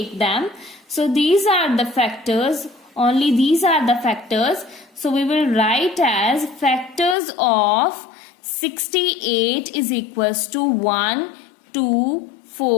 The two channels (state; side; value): drops out; right; at 7.2 s